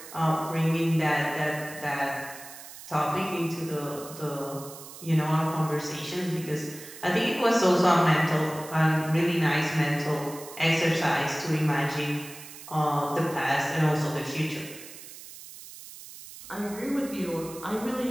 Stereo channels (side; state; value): right; noise; hiss, 15 dB below the sound